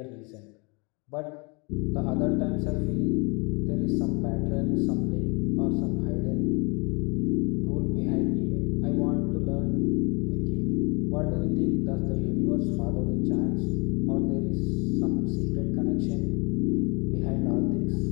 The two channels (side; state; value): right; quieter; 30.4 dB